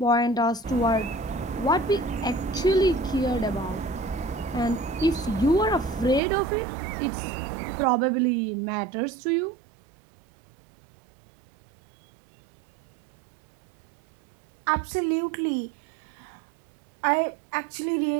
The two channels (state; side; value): drops out; left; at 6.2 s